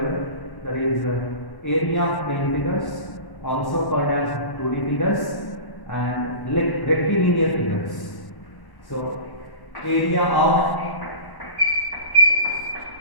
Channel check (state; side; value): late; right; 1.1 ms